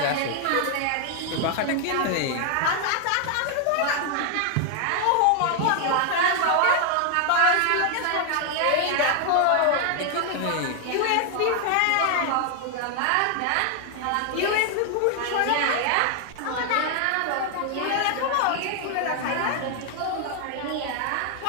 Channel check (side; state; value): both; different; correlation 0.00